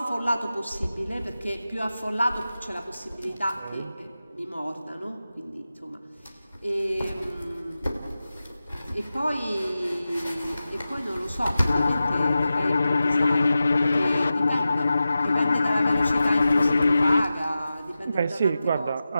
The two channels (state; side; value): inverted; both; correlation -0.93